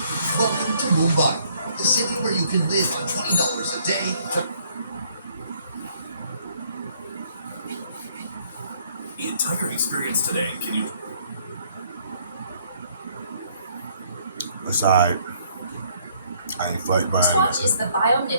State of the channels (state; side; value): inverted; both; correlation -0.65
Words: Welcome to Mumbai, the city where you can live on $20 a day. The entire experience today, can you... Aside, I ain't fight buying it. Watch is the